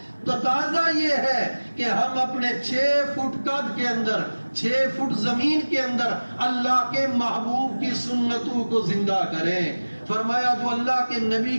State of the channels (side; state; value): both; inverted; correlation -1.00